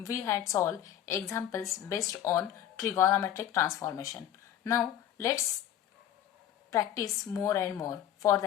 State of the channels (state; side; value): quieter; right; 11.0 dB